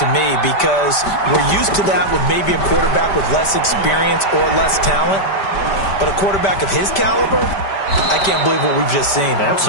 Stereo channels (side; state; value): right; late; 5.1 ms